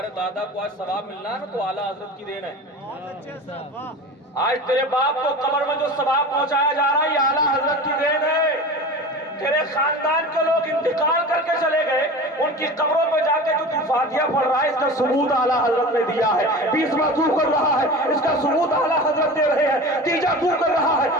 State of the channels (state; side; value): normal; both; correlation 0.34